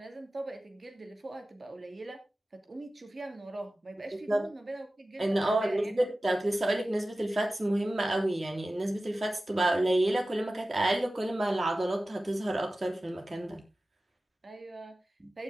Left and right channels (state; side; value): normal; both; correlation 0.95